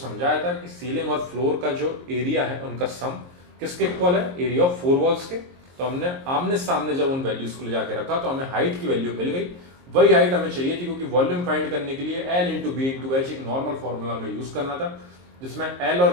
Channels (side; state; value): left; late; 23 ms